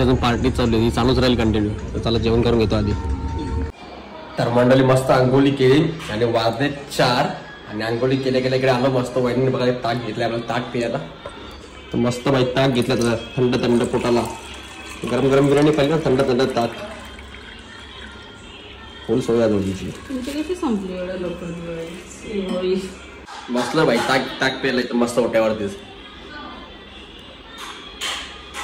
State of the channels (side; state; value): both; identical; correlation 1.00